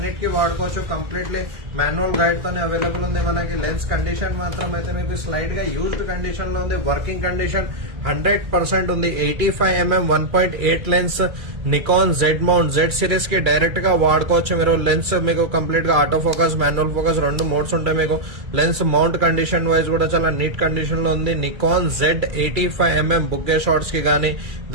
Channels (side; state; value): left; late; 2.3 ms